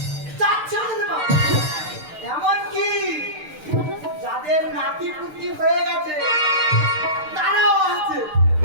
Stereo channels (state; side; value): late; left; 6.6 ms